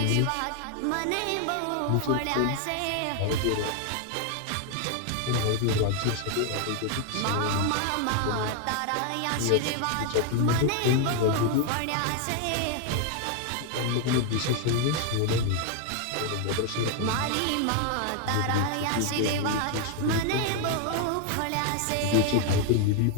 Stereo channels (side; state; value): both; different; correlation 0.00